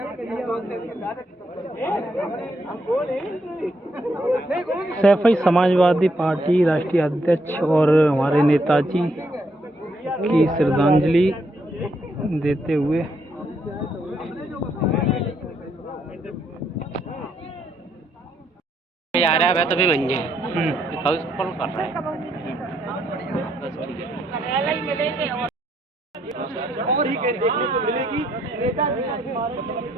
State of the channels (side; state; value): both; normal; correlation 0.74